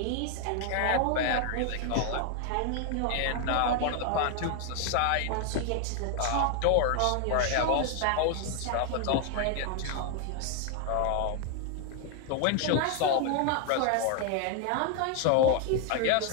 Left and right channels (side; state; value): both; different; correlation 0.00